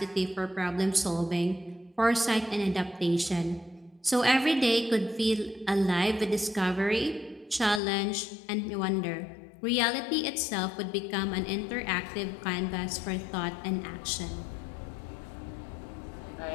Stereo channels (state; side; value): drops out; right; at 7.8 s